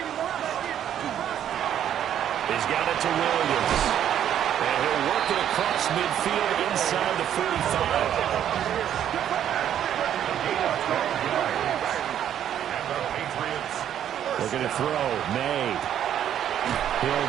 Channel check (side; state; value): left; quieter; 10.2 dB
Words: He's got it to Williams. And he'll work it across midfield inside the 45. Looking to throw. May. He'll